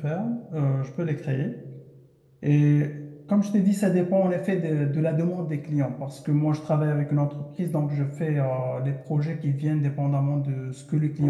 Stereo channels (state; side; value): identical; both; correlation 1.00